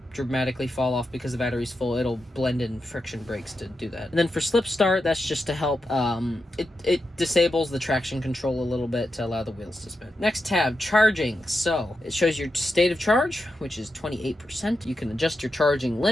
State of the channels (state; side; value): normal; both; correlation 0.87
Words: dramatically fall off because the battery's full. It'll blend in friction brakes to do that. And then for slip start, that's just to help, it disables the traction control a little bit to allow the wheels to spin. Next tab, charging. So it shows your state of charge, which is 28%. You can adjust your charging